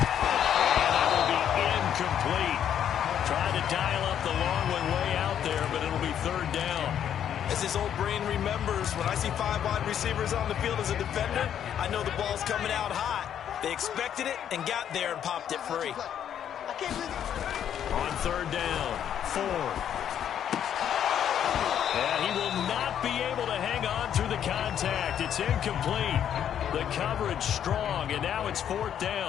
that will be incomplete. Trying to dial up the long one way out there, but it'll be 3rd down. As his old brain remembers, when I see 5 wide receivers on the field as a defender, I know the ball's coming out hot. They expected it and got there and popped it free. On 3rd down, Ford. And he will not be able to hang on through the contact. It's incomplete. The coverage strong, and now it's 4th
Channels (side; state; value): right; quieter; 9.5 dB